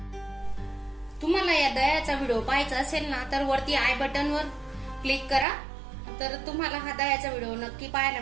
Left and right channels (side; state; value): left; drops out; at 5.5 s